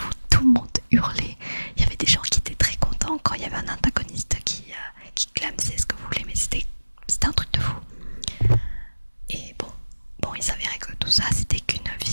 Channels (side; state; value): both; inverted; correlation -1.00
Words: tout le monde hurlait. Il y avait des gens qui étaient très contents quand il y avait un antagoniste qui clamsait ce que vous voulez, mais c'était un truc de fou. Et bon, il s'avérait que tout ça c'était qu'une